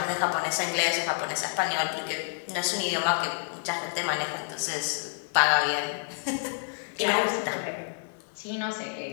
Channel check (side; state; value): right; silent; 59 dB below the other